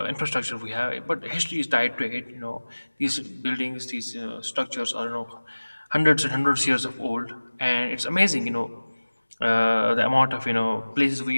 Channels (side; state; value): both; inverted; correlation -1.00